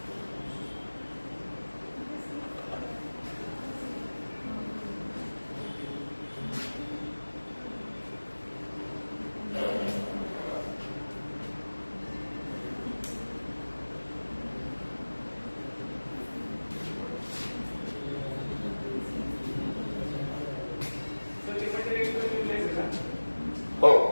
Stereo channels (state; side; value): inverted; both; correlation -1.00